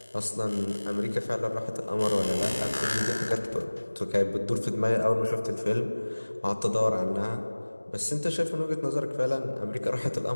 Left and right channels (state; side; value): inverted; both; correlation -1.00